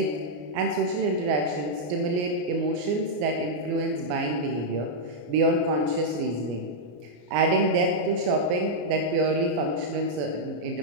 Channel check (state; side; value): late; left; 34 ms